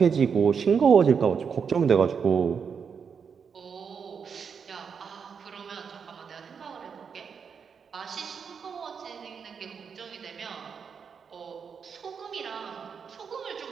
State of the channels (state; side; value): quieter; left; 6.4 dB